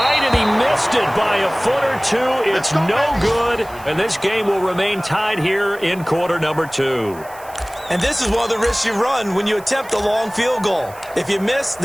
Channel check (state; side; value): noise; right; hiss, 22 dB below the sound